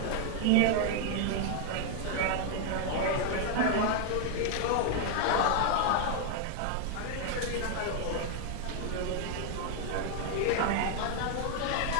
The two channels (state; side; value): different; both; correlation 0.00